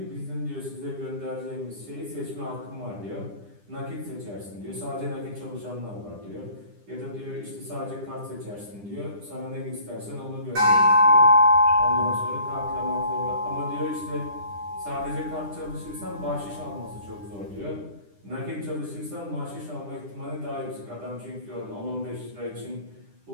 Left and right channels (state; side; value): late; left; 9.9 ms